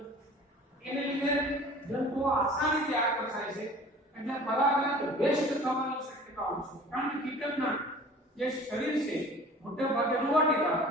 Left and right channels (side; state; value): both; normal; correlation 0.45